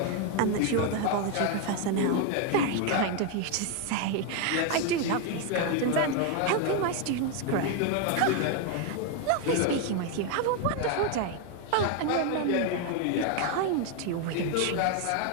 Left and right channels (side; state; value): both; different; correlation 0.01